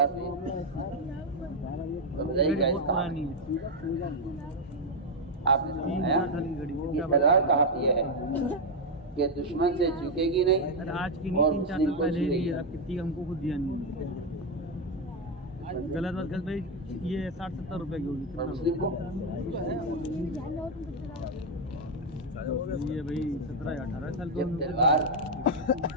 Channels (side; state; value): both; normal; correlation 0.03